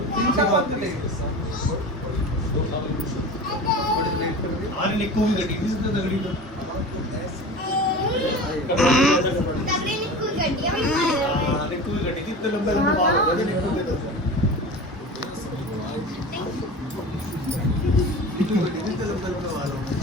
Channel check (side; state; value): both; normal; correlation 0.33